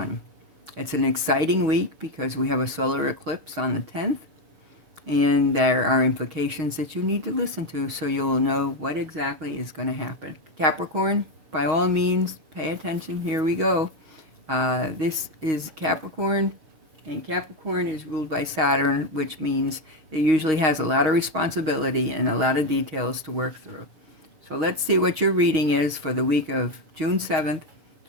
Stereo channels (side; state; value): left; late; 6.4 ms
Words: It's an exciting week because we have a solar eclipse on the 10th, and there are implications that you need to listen to so you'll know what exactly is going to happen. Capricorn, by all means, pay attention. Here we go. This is Capricorn. And Capricorn is ruled by Saturn, which means it usually has a lot of responsibility and a lot of details to work through. So let's see what your reading is for the week of June 7th,